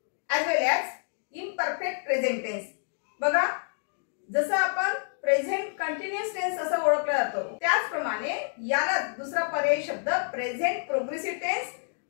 as well as imperfect present tense. बघा, जसं आपण प्रेझेंट कंटिन्युअस टेन्स असं ओळखलं जातो, त्याचप्रमाणे याला दुसरा पर्यायी शब्द प्रेझेंट प्रोग्रेसिव्ह टेन्स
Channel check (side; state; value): right; silent; digital silence